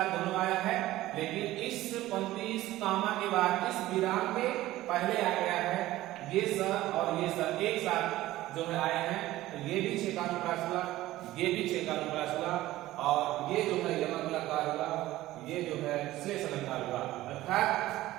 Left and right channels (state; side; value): quieter; left; 16.1 dB